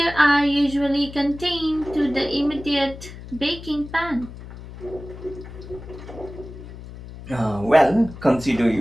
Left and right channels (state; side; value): noise; left; hum, 14 dB below the sound